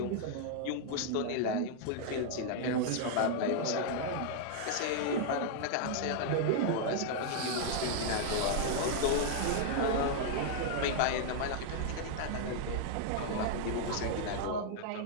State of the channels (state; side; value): different; both; correlation 0.00